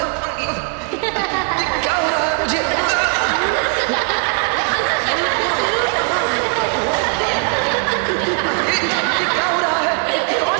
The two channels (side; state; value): left; quieter; 39.2 dB